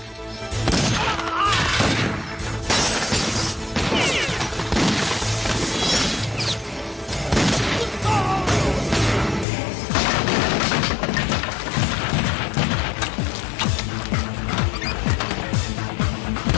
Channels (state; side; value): drops out; right; at 9.5 s